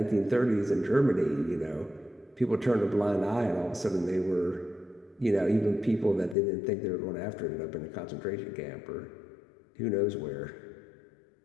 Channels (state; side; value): drops out; right; at 6.4 s